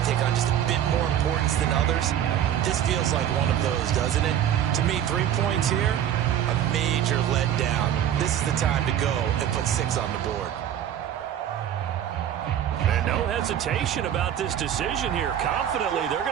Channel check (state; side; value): quieter; left; 10.3 dB